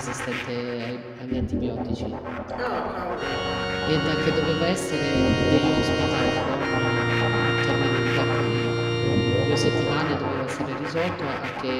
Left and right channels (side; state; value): both; identical; correlation 1.00